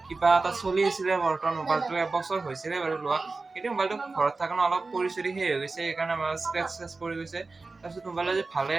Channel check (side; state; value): left; quieter; 3.7 dB